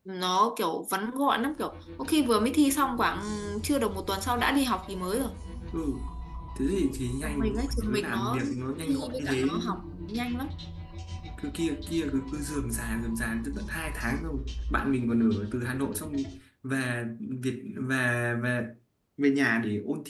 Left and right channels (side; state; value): both; identical; correlation 1.00